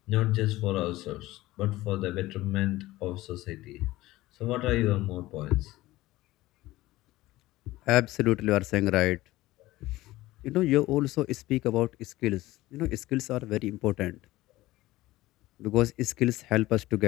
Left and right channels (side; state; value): right; quieter; 17.6 dB